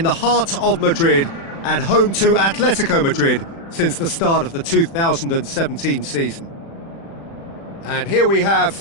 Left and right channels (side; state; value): right; late; 36 ms